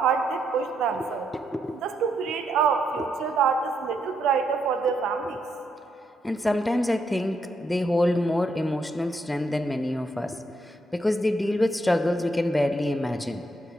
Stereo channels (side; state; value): both; normal; correlation 0.78